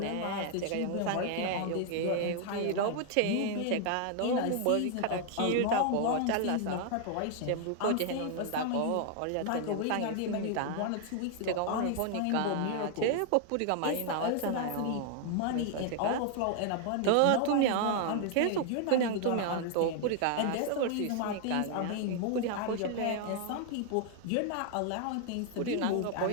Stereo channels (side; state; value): both; different; correlation 0.00